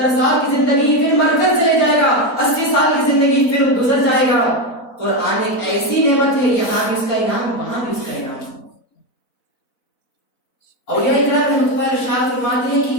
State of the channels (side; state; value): right; late; 4.3 ms